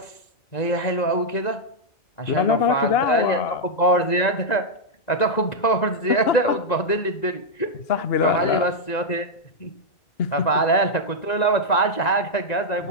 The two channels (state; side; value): late; right; 1.9 ms